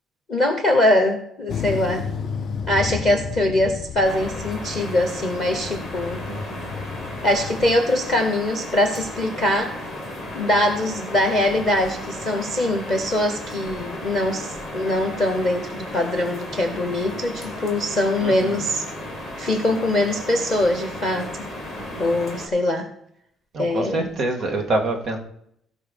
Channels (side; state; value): both; normal; correlation 0.66